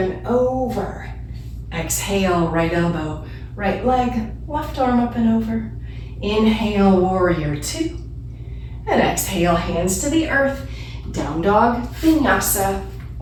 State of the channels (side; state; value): both; identical; correlation 1.00